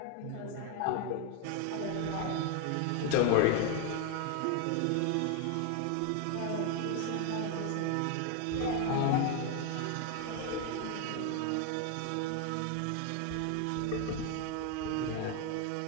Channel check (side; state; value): both; different; correlation 0.01